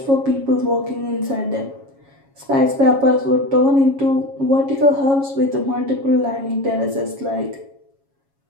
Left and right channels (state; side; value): late; left; 7.3 ms